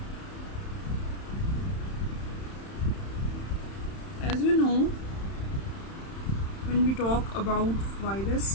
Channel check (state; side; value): late; right; 31 ms